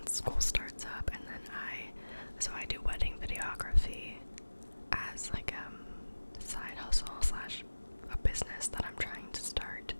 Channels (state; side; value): inverted; both; correlation -1.00